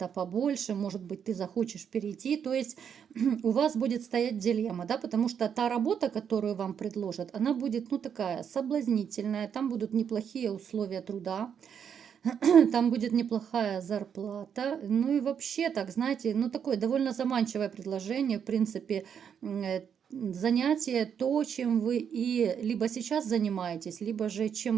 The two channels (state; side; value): quieter; left; 7.8 dB